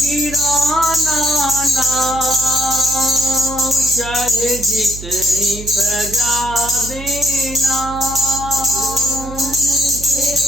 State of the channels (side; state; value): right; noise; hum, 11 dB below the sound